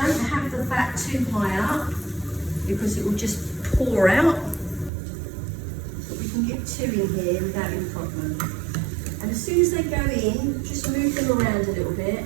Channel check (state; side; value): drops out; left; at 4.9 s